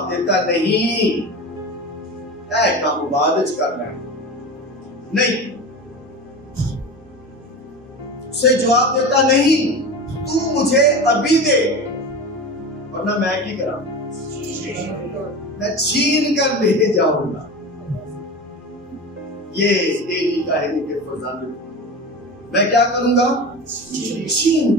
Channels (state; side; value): normal; both; correlation 0.29